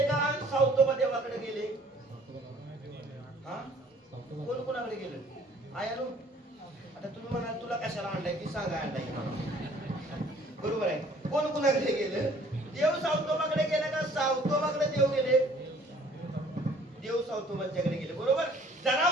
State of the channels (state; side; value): normal; both; correlation 0.56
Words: का? सावतोबा देवाकडे गेले? कोण कोणाकडे गेलं? आयानो, आता तुम्ही म्हणाल तुला कशाला आणलाय ती सांगा. आणलाय बरोबर आहे. कोण कोणाकडे गेलं? देव सावतोबाकडे गेले का सावतोबाकडे देव गेले? देव सावतोबांच्याकडे गेले बरोबर.